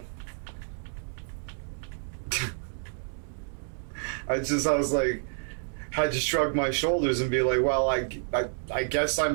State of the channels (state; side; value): silent; left; digital silence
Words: I was like, had to shrug my shoulders and be like, well, I guess